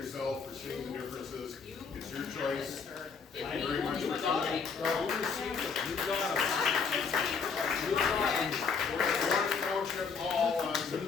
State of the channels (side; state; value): right; quieter; 5.5 dB